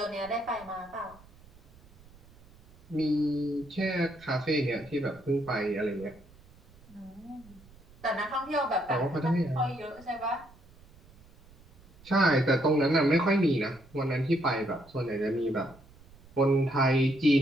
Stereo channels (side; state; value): right; noise; rumble, 25 dB below the sound